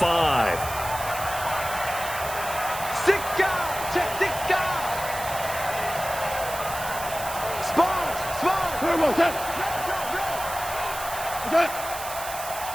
6 guys. Check 6 guys. Sponge.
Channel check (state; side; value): noise; right; hiss, 9 dB below the sound